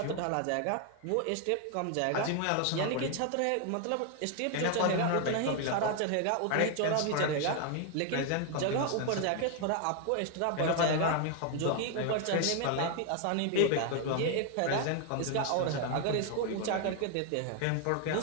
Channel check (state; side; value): different; both; correlation 0.01